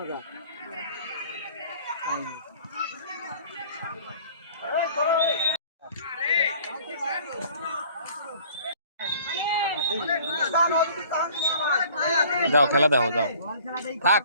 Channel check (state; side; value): inverted; both; correlation -0.51